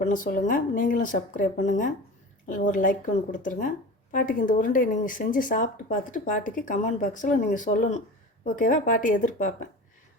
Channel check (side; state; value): both; normal; correlation 0.33